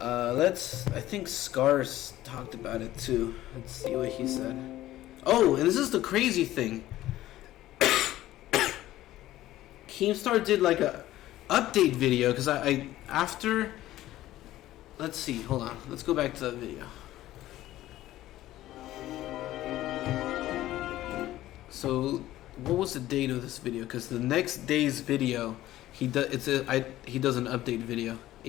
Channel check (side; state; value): right; quieter; 14.9 dB